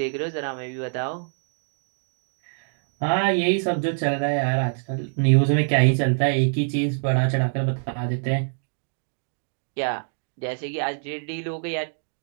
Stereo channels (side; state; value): left; silent; digital silence